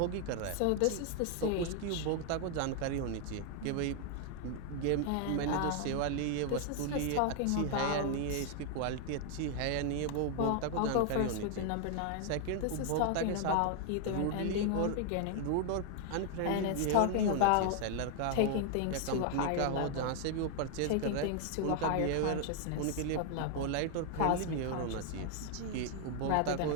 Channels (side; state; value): both; different; correlation 0.00